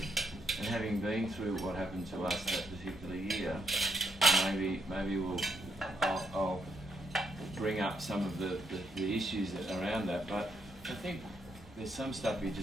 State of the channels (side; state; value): both; normal; correlation 0.75